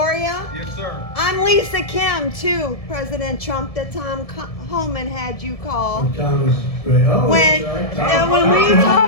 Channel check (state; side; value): late; right; 1.7 ms